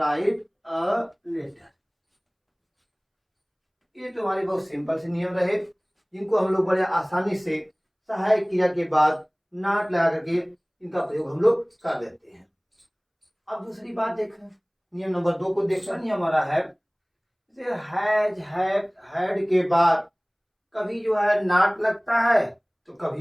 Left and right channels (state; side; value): identical; both; correlation 1.00